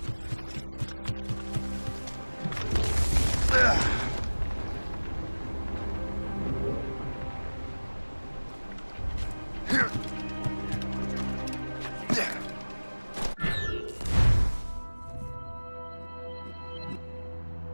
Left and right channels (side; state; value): both; inverted; correlation -1.00